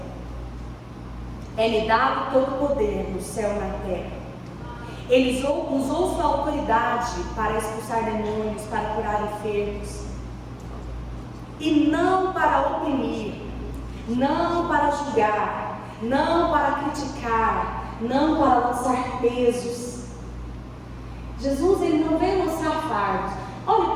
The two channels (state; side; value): identical; both; correlation 1.00